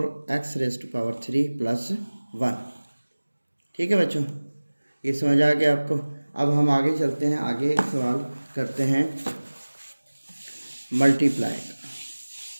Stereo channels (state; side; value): inverted; both; correlation -1.00